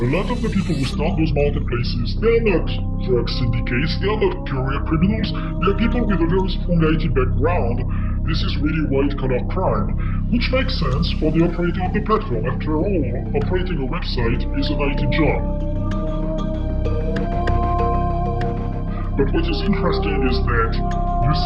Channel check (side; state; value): both; identical; correlation 1.00